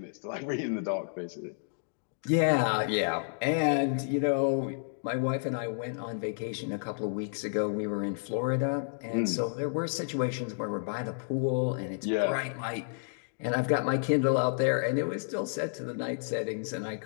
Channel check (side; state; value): right; silent; digital silence